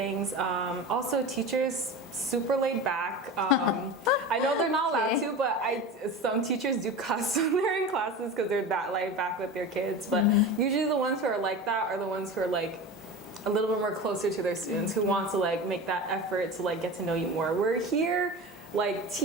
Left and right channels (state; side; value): normal; both; correlation 0.30